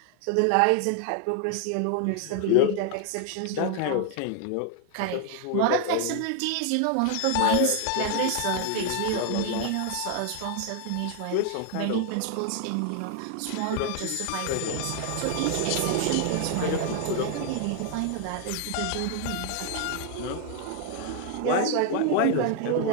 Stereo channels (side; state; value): both; different; correlation 0.00